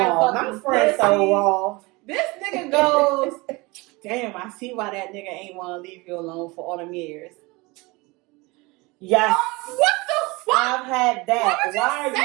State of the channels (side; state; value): left; quieter; 24.4 dB